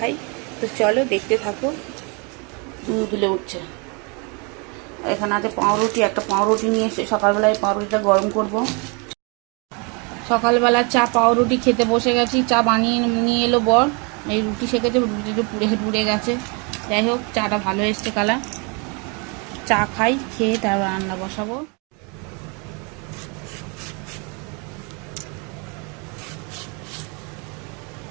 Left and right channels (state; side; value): quieter; left; 32.6 dB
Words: তো চলো দেখতে থাকো। দুলে উঠছে। এখানে আছে পাউরুটি, একটা পাউরুটি নিয়ে এসে সকালবেলায় পাউরুটিটা গরম করব। সকালবেলা চা পাউরুটি খেতে বসে গেছি। চা বানিয়ে নিয়ে এলো বর। এই রুটি সেকেছে, রুটিটা পুড়ে পুড়ে গেছে। যাই হোক, চাটা ভালো এসছে কালার। চা খাই, খেয়ে তারপর রান্না বসাবো।